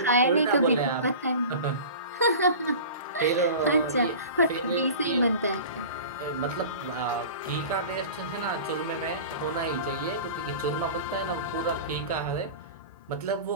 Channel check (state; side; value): inverted; both; correlation -0.36